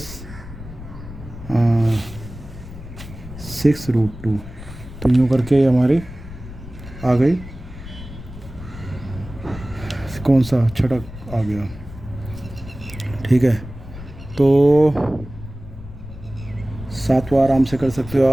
6 √2। तो यूँ करके हमारी आ गई, कौन सा छठा आ गया। ठीक है, तो 7वां आराम से कर सकते हो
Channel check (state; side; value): noise; left; rumble, 14 dB below the sound